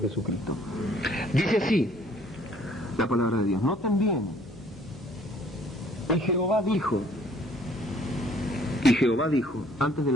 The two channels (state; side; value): normal; both; correlation 0.59